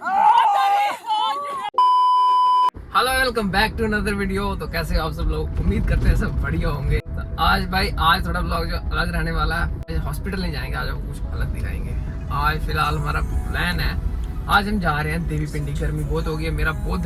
Hello welcome back to another video. तो कैसे हो आप सब लोग? उम्मीद करते हैं सब बढ़िया होंगे। तो आज थोड़ा ब्लॉग जो अलग रहने वाला है। हॉस्पिटल नहीं जाएंगे, आज आपको कुछ अलग दिखाएंगे। आज फिलहाल हमारा प्लान है, आज हम जा रहे हैं देवी पिंडी। गर्मी बहुत हो गई है, मेरा बहुत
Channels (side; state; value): both; identical; correlation 1.00